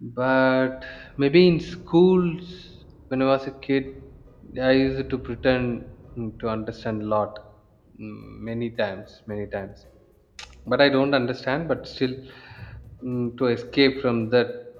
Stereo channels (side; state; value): both; identical; correlation 1.00